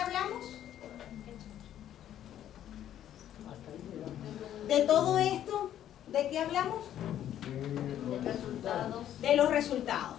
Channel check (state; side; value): quieter; right; 11.2 dB